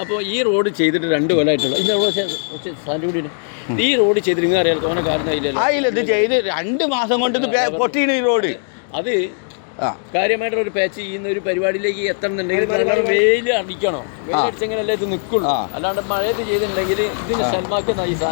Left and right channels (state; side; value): silent; right; digital silence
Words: അപ്പോൾ ഈ റോഡ് ചെയ്തിട്ട് 2 കൊല്ലമായിട്ടുള്ള ഈ റോഡ് ചെയ്തിട്ട് നിങ്ങൾ അറിയാലോ തോന്നെ കാരണം ഇത് ചെയ്ത് 2 മാസം കൊണ്ട് ഇത് പൊട്ടിയാണ് ഈ റോഡ്. അത് കാര്യമായിട്ടൊരു പാച്ച് ചെയ്യുന്ന ഒരു പരിപാടിയിലേക്ക് എത്തണമെന്നുണ്ടെങ്കിൽ വെയിൽ അടിക്കണോ? വെയിലടിച്ചെങ്കിലല്ലേ ഇത് നിൽക്കുള്ളൂ. അല്ലാണ്ട് മഴയത്ത് ചെയ്തിട്ടുണ്ടെങ്കിൽ ഇതിന് ഷൽമാക്കുന്ന ഈ